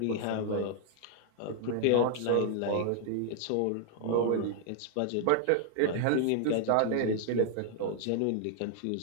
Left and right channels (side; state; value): both; different; correlation 0.00